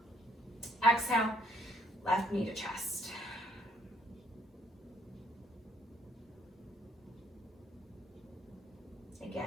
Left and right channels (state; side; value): normal; both; correlation 0.67